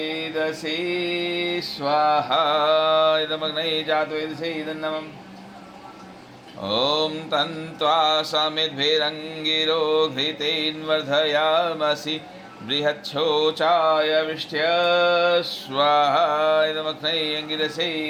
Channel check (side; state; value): both; identical; correlation 1.00